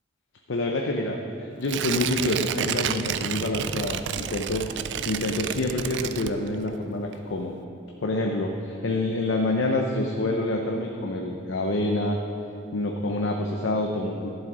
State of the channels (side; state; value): both; normal; correlation 0.23